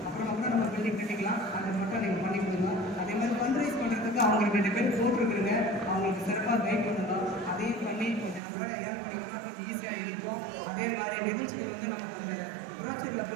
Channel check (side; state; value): left; drops out; at 8.4 s